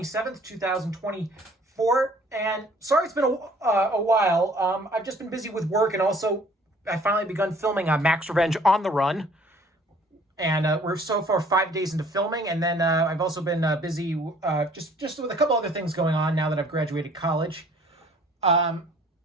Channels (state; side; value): normal; both; correlation 0.56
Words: 2024. And sorry it's been a while. I've just been busy with work, and also I finally begun filming Max Revenge on the Run. And we're so far 5 days into filming, and then I've also been busy just with a couple other things going on now that I've graduated college.